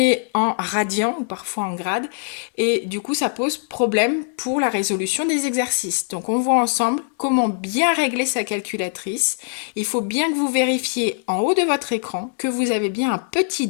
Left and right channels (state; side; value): silent; right; digital silence